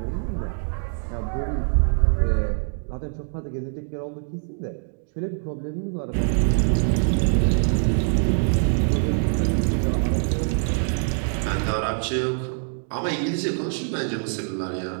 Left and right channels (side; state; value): left; silent; digital silence